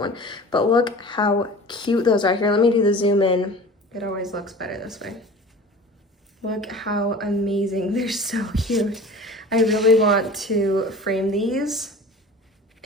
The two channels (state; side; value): normal; both; correlation 0.40